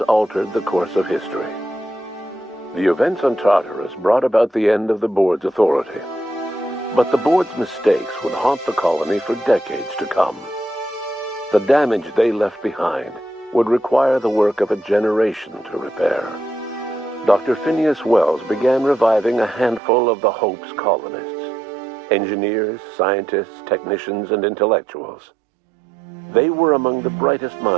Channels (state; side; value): drops out; left; at 19.8 s